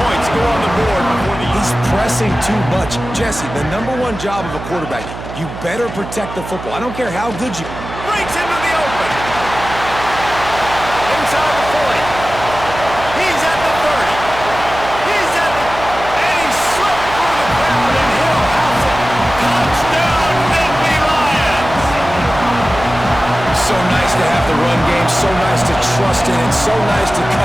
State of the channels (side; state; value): right; noise; hum, 11 dB below the sound